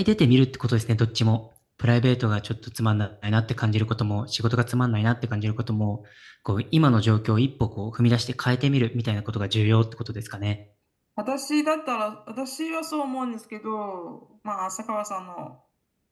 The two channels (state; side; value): identical; both; correlation 1.00